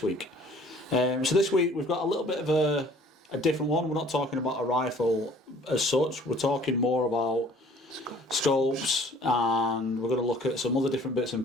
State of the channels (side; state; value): both; normal; correlation 0.53